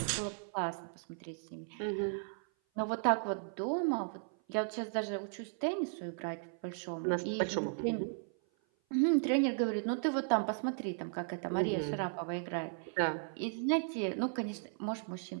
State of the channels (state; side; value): silent; left; 54 dB below the other